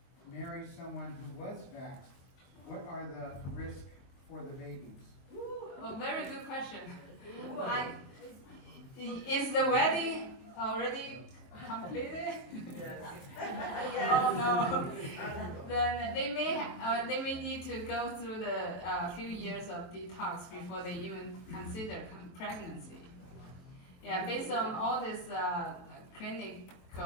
marries someone who was vaxxed, what are the risks for the babies? Oh, very good question. Is the wedding already completed? Oh no. Then they may need to go through the few years of detox before they even consider pregnancy. Yeah, based on all this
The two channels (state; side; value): late; right; 23 ms